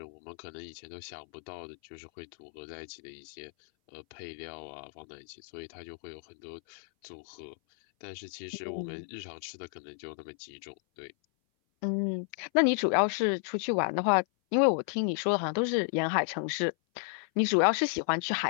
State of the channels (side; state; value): right; silent; 56 dB below the other